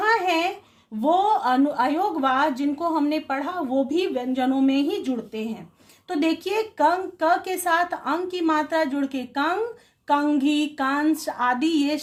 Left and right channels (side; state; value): both; identical; correlation 1.00